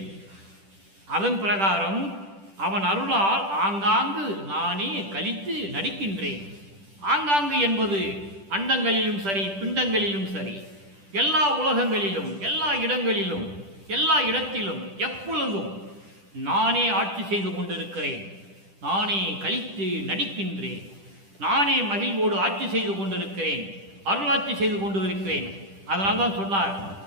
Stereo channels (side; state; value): left; late; 10 ms